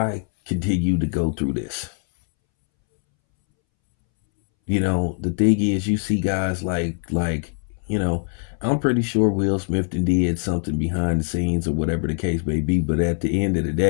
continue to go through this? The thing is, you see guys I'm pretty sure Will Smith did something behind the scenes or whatever the case may be, but at the end of the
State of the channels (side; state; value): right; silent; 64 dB below the other